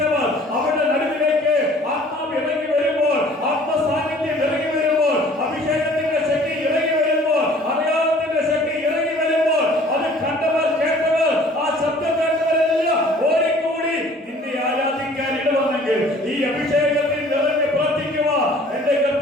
അവരുടെ നടുവിലേക്ക് ആത്മാവ് ഇറങ്ങി വരുമ്പോൾ, ആത്മസാന്നിധ്യം ഇറങ്ങി വരുമ്പോൾ, അഭിഷേകത്തിന്റെ ശക്തി ഇറങ്ങി വരുമ്പോൾ, അടയാളത്തിന്റെ ശക്തി ഇറങ്ങി വരുമ്പോൾ, അത് കണ്ടവർ, കേട്ടവർ, ആ ശബ്ദം കേട്ടവരെല്ലാം ഓടിക്കൂടി നിന്നെ ആരാധിക്കാൻ ഇടവന്നെങ്കിൽ ഈ അഭിഷേകത്തിൽ നിറഞ്ഞ് പ്രാർത്ഥിക്കുക എന്റെ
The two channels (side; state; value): both; normal; correlation 0.52